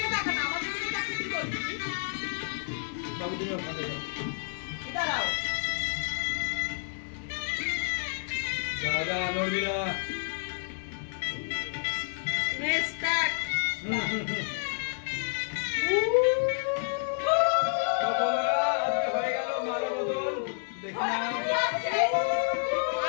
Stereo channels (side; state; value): right; silent; 56 dB below the other